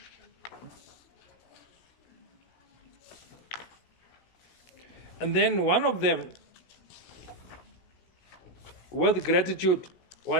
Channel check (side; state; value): right; late; 16 ms